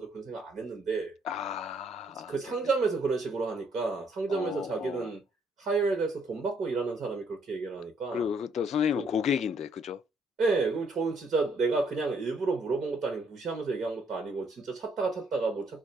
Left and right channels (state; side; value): normal; both; correlation 0.68